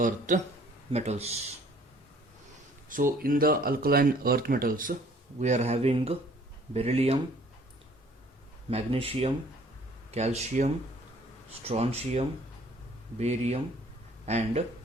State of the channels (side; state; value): both; normal; correlation 0.57